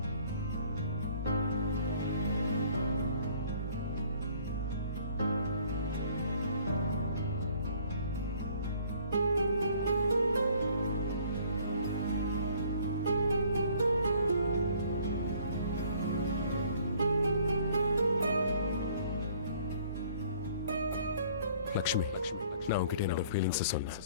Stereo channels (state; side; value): inverted; both; correlation -0.58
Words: லக்ஷ்மி, நான் உன்கிட்ட என்னோட ஃபீலிங்ஸ் சொன்னேன்.